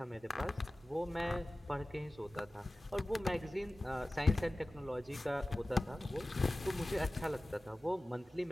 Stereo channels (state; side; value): normal; both; correlation 0.97